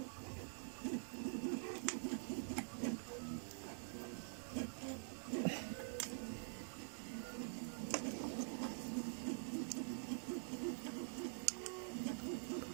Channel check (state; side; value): silent; left; digital silence